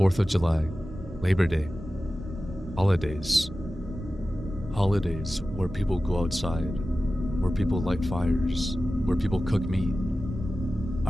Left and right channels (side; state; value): both; normal; correlation 0.95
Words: of July, Labor Day, holidays. Holidays where people go outside, where people light fires, where people cook meat.